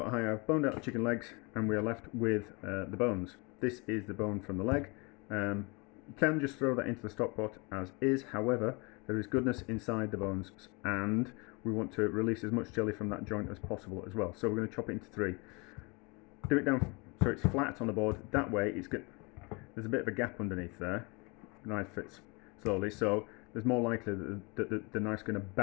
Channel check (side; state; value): right; quieter; 29.3 dB